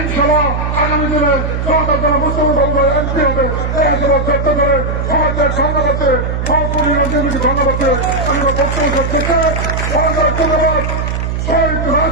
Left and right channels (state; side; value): noise; right; hum, 2 dB below the sound